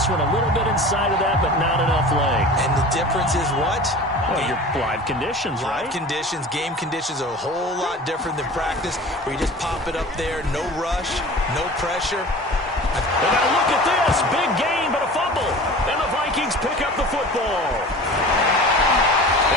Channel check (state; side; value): normal; both; correlation 0.39